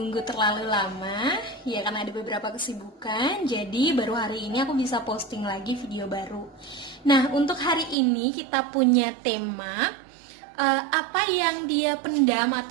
terlalu lama. Ya, karena ada beberapa kesibukan, jadi baru hari ini aku bisa posting lagi video baru. Nah, untuk hari ini kita punya tema apa yang dia pendam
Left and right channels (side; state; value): left; drops out; at 8.0 s